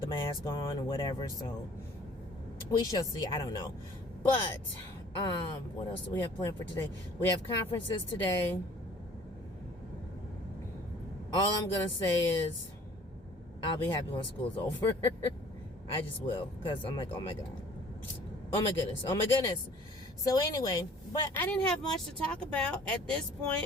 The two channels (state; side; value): normal; both; correlation 0.52